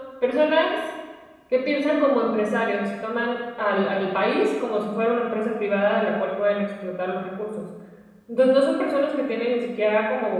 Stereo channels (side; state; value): both; identical; correlation 1.00